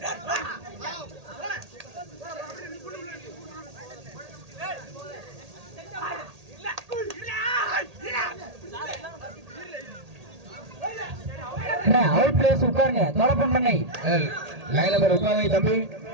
அவுட் பிளேஸ் உட்காருங்க. தோழப்பன் பண்ணை லைன் நம்பர் உட்காருங்க தம்பி.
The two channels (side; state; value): left; late; 1.8 ms